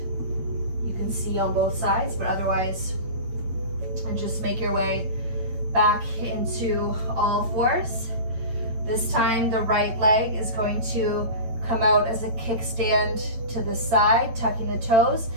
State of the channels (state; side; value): late; left; 8.9 ms